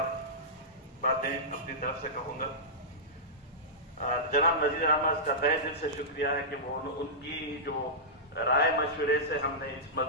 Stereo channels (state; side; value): normal; both; correlation -0.15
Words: बातें अपनी तरफ से कहूंगा. जनाब नज़ीर अहमद का तहे दिल से शुक्रिया है कि वो उनकी जो राय मशवरे से हमने इस